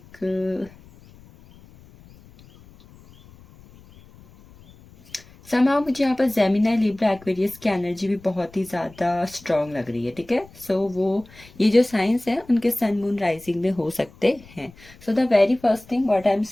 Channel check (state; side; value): noise; left; rumble, 24 dB below the sound